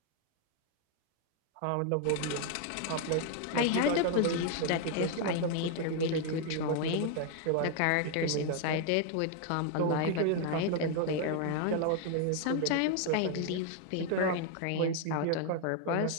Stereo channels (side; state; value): both; different; correlation 0.00